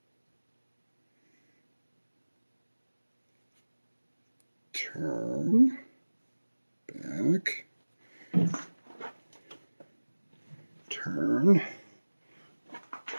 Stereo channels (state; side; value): inverted; both; correlation -1.00